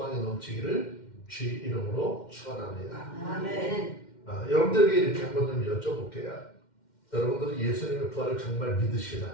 넘치기를 주의 이름으로 축원합니다. 아멘. 여러분들에게 이렇게 한번 좀 여쭤볼게요. 여러분들은 예수님의 부활을 정말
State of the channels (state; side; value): late; right; 2.1 ms